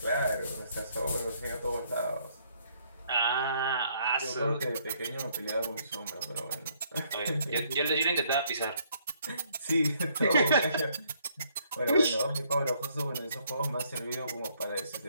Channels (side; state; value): both; inverted; correlation -0.68